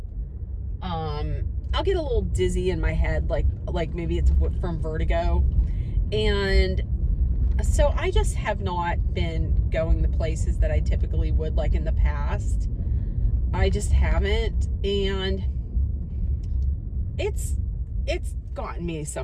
I'll get a little dizzy in my head, like maybe it's from vertigo, and so I just have not been going the places that I typically would, like in the past. I just haven't, and it's gotten me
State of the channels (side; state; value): both; identical; correlation 1.00